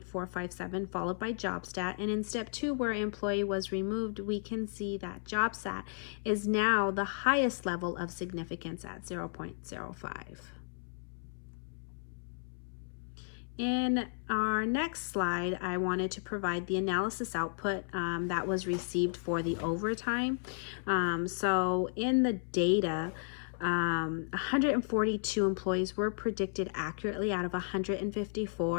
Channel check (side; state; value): right; silent; 55 dB below the other